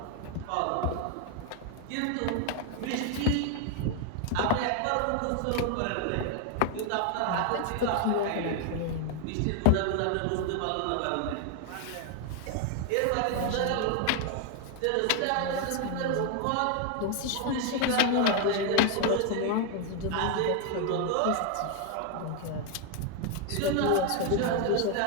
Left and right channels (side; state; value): both; different; correlation 0.01